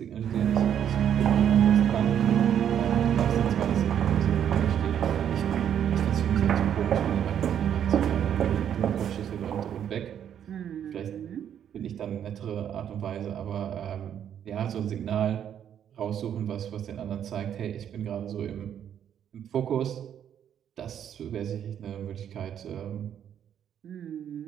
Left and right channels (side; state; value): left; quieter; 9.4 dB